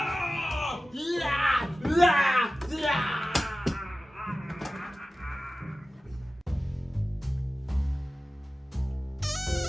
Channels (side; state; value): both; normal; correlation 0.96